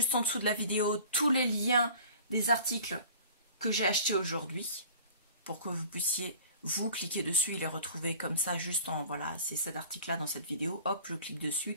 en dessous de la vidéo tous les liens des articles que j'ai achetés aujourd'hui pour que vous puissiez vous cliquer dessus et les retrouver comme ça juste en voilà, c'est cet article là dans cette vidéo, hop, je clique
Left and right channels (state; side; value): inverted; both; correlation -0.44